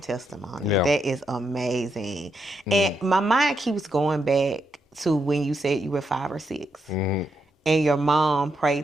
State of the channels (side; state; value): both; normal; correlation 0.81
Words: Yeah. That is amazing. And my mind keeps going back to when you said you were 5 or 6 and your mom